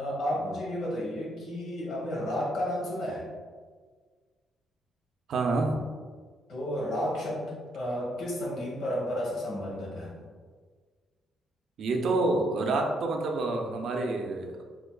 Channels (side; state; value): both; normal; correlation 0.73